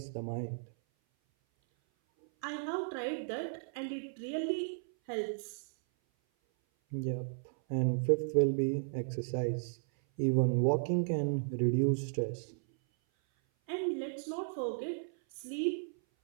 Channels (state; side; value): silent; left; 55 dB below the other